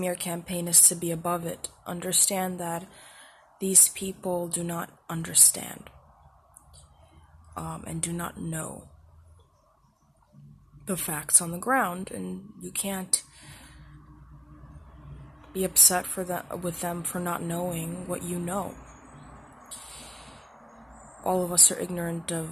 campaign is to be above it. Understand that these people do not understand and do not know the facts on the ground, and you can't be upset with them for not knowing what you know. All of us are ignorant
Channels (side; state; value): both; normal; correlation 0.92